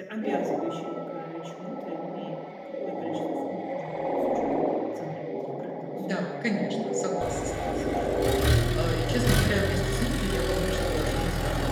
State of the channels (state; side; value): identical; both; correlation 1.00